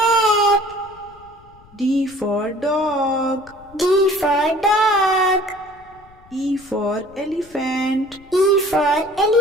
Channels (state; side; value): noise; left; rumble, 26 dB below the sound